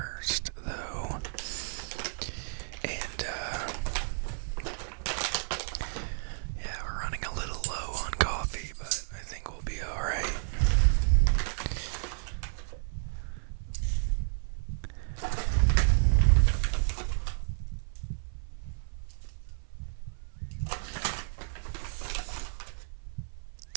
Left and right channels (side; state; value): left; silent; 57 dB below the other